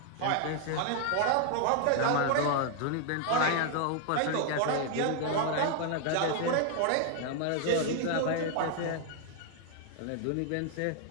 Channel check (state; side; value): different; both; correlation 0.00